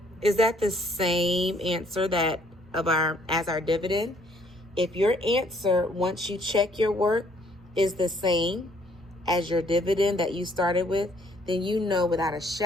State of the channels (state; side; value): normal; both; correlation 0.63